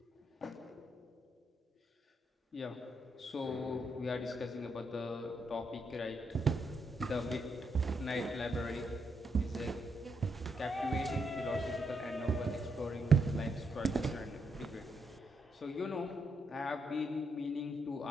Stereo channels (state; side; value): normal; both; correlation 0.79